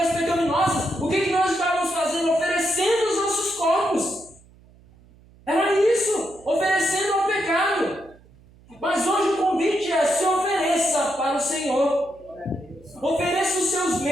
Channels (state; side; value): noise; right; hum, 27 dB below the sound